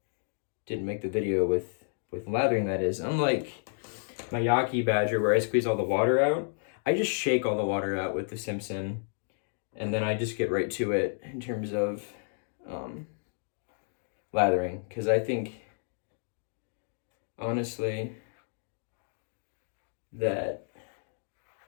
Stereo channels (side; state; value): right; silent; digital silence